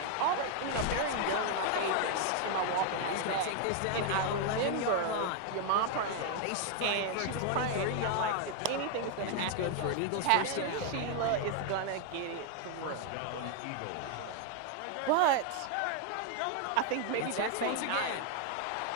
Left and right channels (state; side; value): different; both; correlation 0.00